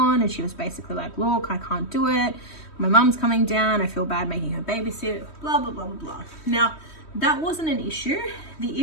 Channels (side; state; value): right; late; 3.1 ms